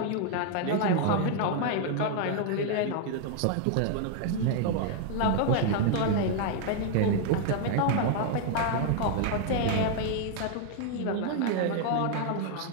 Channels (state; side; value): different; both; correlation 0.00